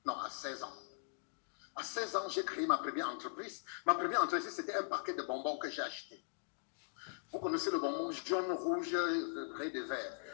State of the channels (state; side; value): silent; right; digital silence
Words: Non, à 16 ans. À 16 ans, j'ai créé ma première entreprise. Ma première entreprise, c'était un paquet de bonbons que j'ai acheté. Vous connaissez le bonbon jaune, rouge, gris et vert.